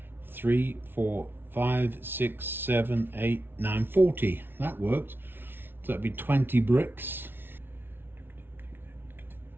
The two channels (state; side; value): late; left; 0.10 ms